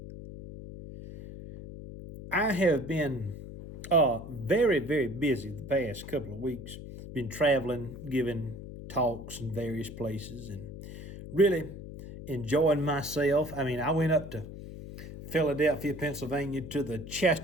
I have been very, very busy the past couple of weeks. Been traveling, giving talks in various places, and really enjoying myself. I went up to Philadelphia, Pennsylvania to the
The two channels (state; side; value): noise; left; hum, 12 dB below the sound